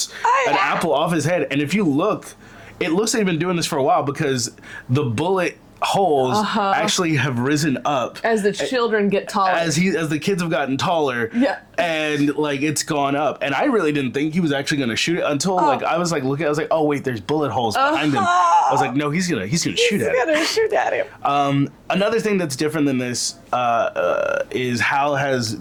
an apple off his head. And if you look, it looks like they've been doing this for a while because the bullet holes actually have risen up as the children get taller. As the kids have gotten taller. Yeah. And like it's gone up. And I really didn't think he was actually gonna shoot it until I was like looking, I was like, oh wait, there's bullet holes behind him. I was like, no, he's gonna shoot at him. He's gonna shoot at him. Another thing that's different than this is Hal has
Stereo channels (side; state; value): both; identical; correlation 1.00